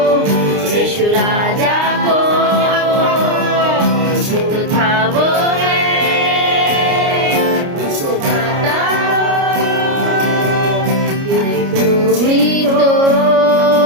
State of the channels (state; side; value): late; left; 29 ms